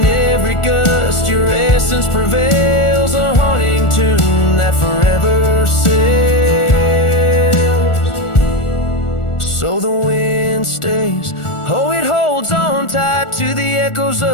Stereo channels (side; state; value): right; late; 1.4 ms